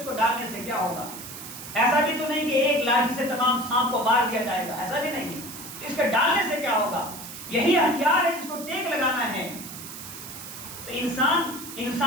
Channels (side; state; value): right; noise; hiss, 12 dB below the sound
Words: کو ڈالنے سے کیا ہوگا؟ ایسا بھی تو نہیں کہ ایک لاٹھی سے تمام سانپ کو مار دیا جائے گا، ایسا بھی نہیں، اس کے ڈالنے سے کیا ہوگا؟ یہی ہتھیار ہے جس کو ٹیک لگانا ہے۔ تو انسان